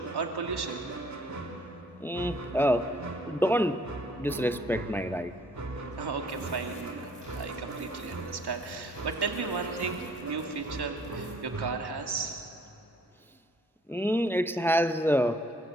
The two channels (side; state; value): both; normal; correlation 0.60